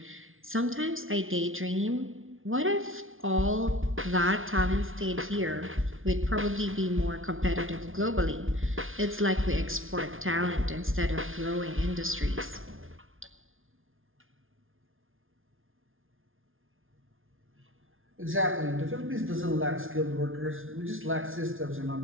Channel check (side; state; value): left; late; 0.59 ms